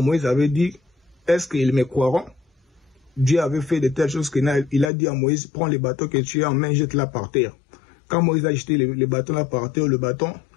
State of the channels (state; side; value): drops out; right; at 4.9 s